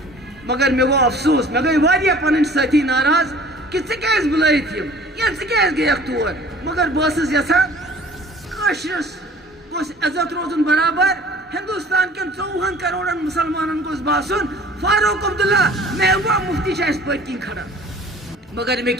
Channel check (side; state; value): both; normal; correlation 0.48